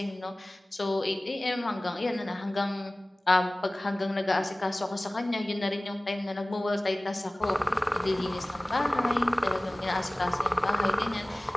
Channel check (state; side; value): normal; both; correlation 0.98